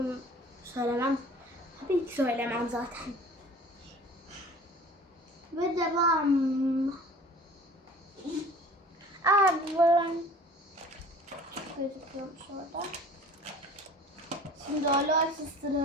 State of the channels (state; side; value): normal; both; correlation 0.46